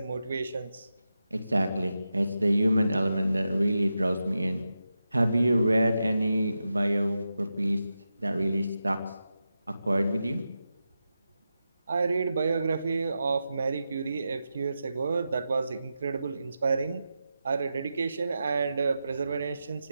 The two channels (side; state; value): both; inverted; correlation -0.90